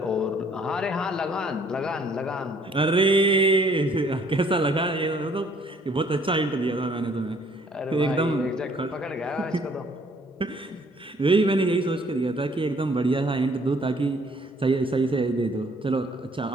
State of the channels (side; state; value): both; normal; correlation 0.61